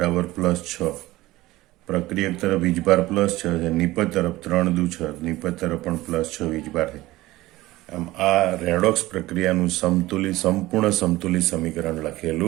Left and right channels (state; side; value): quieter; left; 18.0 dB